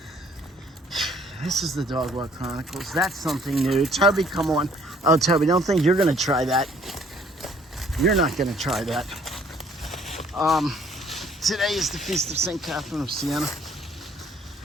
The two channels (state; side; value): normal; both; correlation 0.61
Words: This is the Dog Walk Chronicles. That's something new. Toby, come on. Oh, Toby, don't think you're gonna try that. You're not gonna try that. Today is the Feast of St. Catherine of Siena.